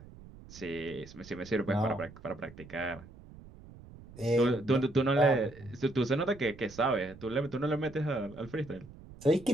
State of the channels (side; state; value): right; noise; rumble, 19 dB below the sound